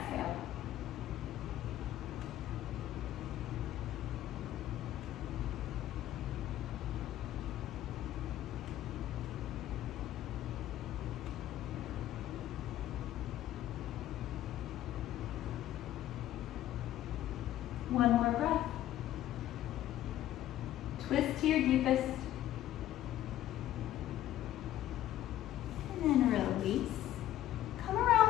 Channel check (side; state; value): right; quieter; 13.1 dB